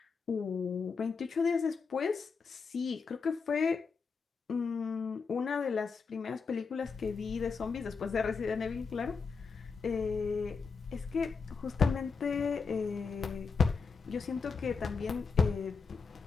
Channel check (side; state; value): right; quieter; 5.2 dB